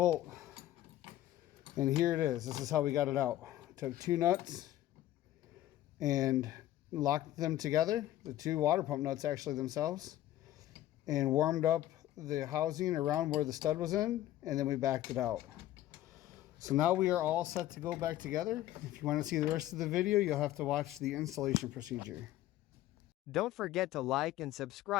And here it is. This is how we got it out. Took two nuts and locked them together, the two water pump nuts actually themselves, and warmed up the housing around where the stud was in, and then we backed it out. So now we are all set to go back together. If you want to see the rest of the video, you'll have to watch the installation procedure. Don't forget to like and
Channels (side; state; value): right; quieter; 13.9 dB